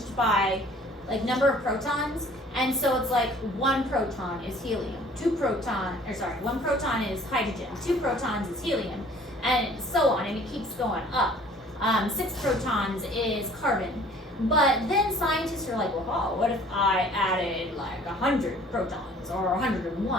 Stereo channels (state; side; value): normal; both; correlation 0.53